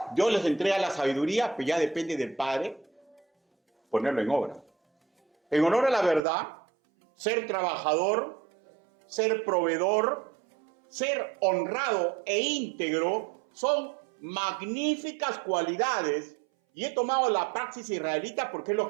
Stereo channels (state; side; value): drops out; left; at 6.2 s